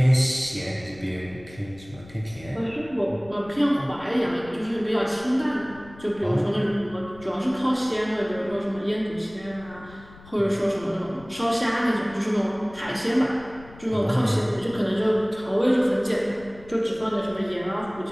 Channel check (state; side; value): noise; left; rumble, 20 dB below the sound